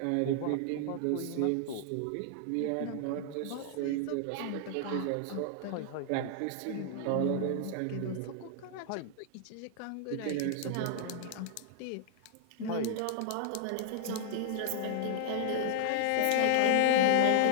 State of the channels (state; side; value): different; both; correlation -0.01